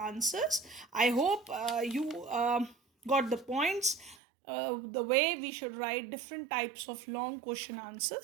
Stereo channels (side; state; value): left; drops out; at 4.2 s